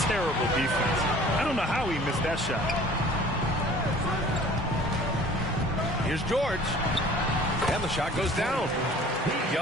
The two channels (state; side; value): normal; both; correlation 0.48